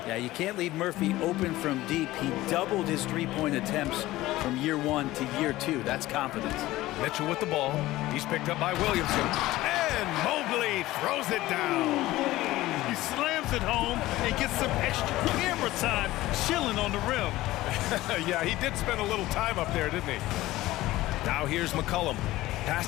Yeah, you can't leave Murphy open from deep. He doubled his three-point attempts from year 1 to year 2. That's confidence. Mitchell with the ball. He's picked up by Williamson. And Mobley throws it down. He slams it home and gets some extra camera time chilling on the rim. Yeah, he did spend a little time up there, didn't he? Now here's McCollum.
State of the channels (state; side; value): quieter; right; 17.0 dB